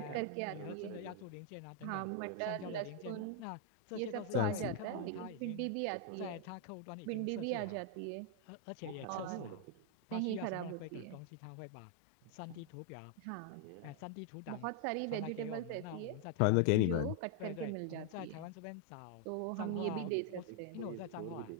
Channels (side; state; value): both; different; correlation 0.00